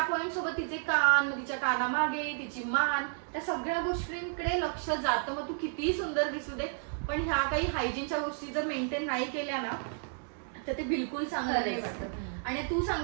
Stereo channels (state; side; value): silent; left; 56 dB below the other